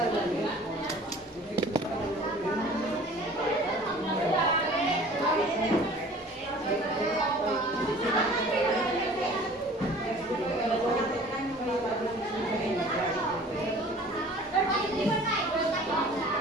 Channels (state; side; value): normal; both; correlation 0.47